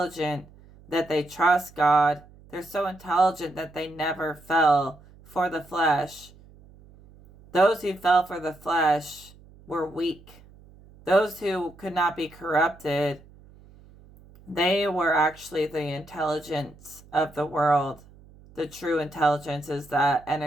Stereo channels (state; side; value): noise; right; hum, 24 dB below the sound